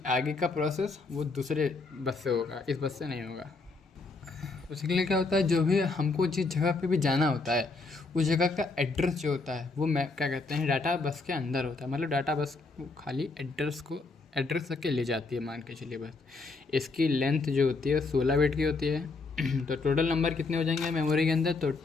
आगे का प्रोसेस वो दूसरे बस से होगा, इस बस से नहीं होगा। उसके लिए क्या होता है, जो भी हमको जिस जगह पे भी जाना होता है, उस जगह का एड्रेस जो होता है वो क्या कहते हैं, डाटा बस के अंदर होता है। मतलब डाटा बस खाली एड्रेस तक के ले जाती है, मान के चलिए बस। इसकी लेंथ जो होती है 16 बिट की होती है। तो टोटल नंबर कितने हो जाएंगे मेमोरी के अंदर? तो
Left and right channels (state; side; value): quieter; right; 3.8 dB